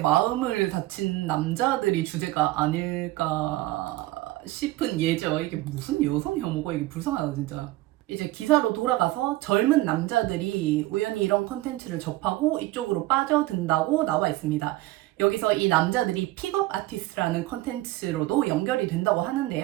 다친 남자들이 주제가 아닐까 싶은 예죠. 이게 무슨 여성 혐오가 이게 불쌍하다 진짜. 이제 기사로 돌아가서 젊은 남자들이 우연히 이런 컨텐츠를 접하고 이쪽으로 빠져든다고 나와 있습니다. 여기서 이 남자들이 픽업 아티스트라는 컨텐츠로도 연결이 된다고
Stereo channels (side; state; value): left; quieter; 17.9 dB